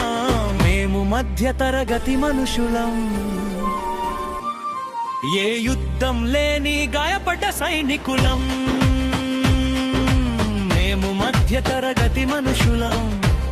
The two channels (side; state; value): both; identical; correlation 1.00